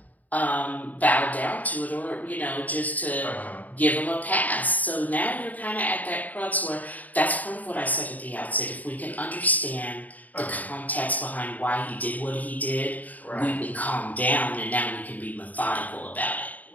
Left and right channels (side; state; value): right; late; 0.077 ms